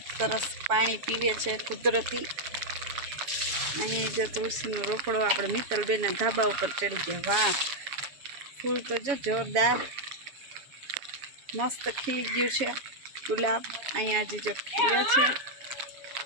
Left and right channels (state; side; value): late; left; 7.2 ms